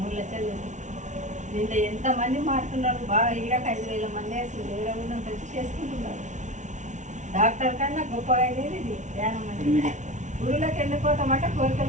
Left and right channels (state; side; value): late; left; 0.36 ms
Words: 3 లక్షలు పెట్టి. దీంట్లో ఎంతమంది మారుతున్నారు. బాగా ఈడక 5,000 మంది అసలు వేరే ఊళ్ళో వచ్చి చేసుకుంటున్నారు. డాక్టర్ కన్నా గొప్పగా అయ్యేది ఇది ధ్యానం అంటే. గురువులకు ఎందుకు పోతామంటే